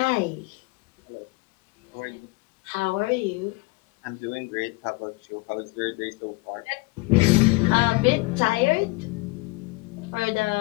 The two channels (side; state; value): right; quieter; 25.0 dB